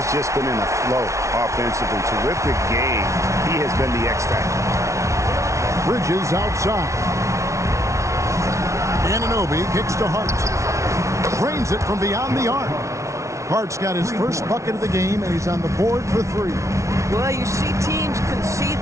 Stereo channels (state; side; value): late; left; 0.14 ms